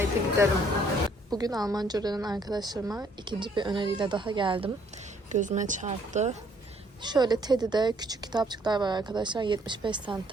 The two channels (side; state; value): both; normal; correlation 0.64